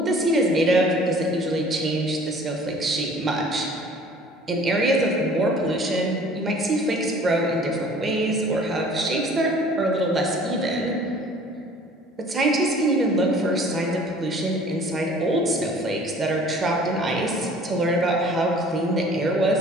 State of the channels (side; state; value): both; normal; correlation 0.50